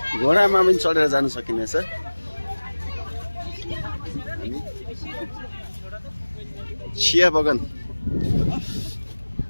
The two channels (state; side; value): inverted; both; correlation -1.00